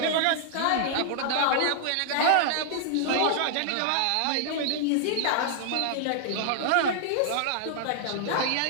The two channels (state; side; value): different; both; correlation -0.01